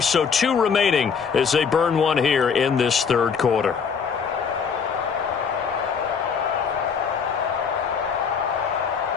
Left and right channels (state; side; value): quieter; right; 6.3 dB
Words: so 2 remaining as they burn one here in this 3rd quarter.